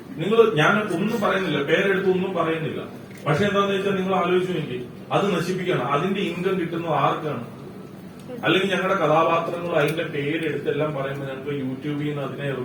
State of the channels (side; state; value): both; identical; correlation 1.00